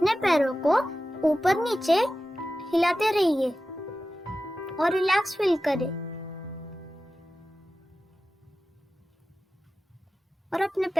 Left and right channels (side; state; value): both; normal; correlation 0.94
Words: पैरों को ऊपर नीचे हिलाते रहिए और रिलैक्स फील करें। और अपने